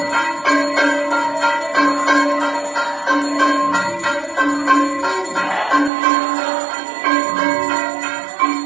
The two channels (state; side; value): drops out; left; at 5.9 s